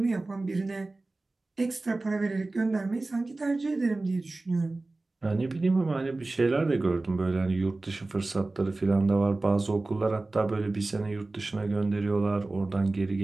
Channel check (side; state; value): left; quieter; 3.2 dB